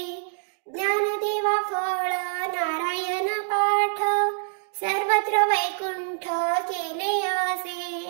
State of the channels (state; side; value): silent; left; digital silence